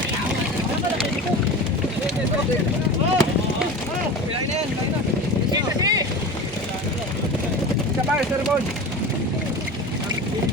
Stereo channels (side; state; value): both; normal; correlation 0.32